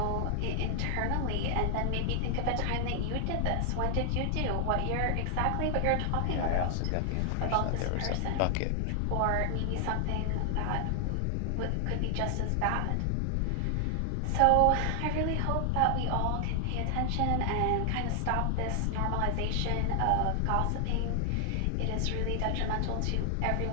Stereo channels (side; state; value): both; different; correlation 0.00